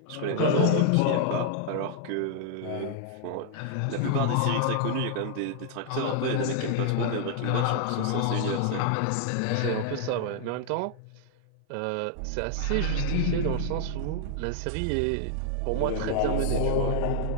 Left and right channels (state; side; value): different; both; correlation -0.01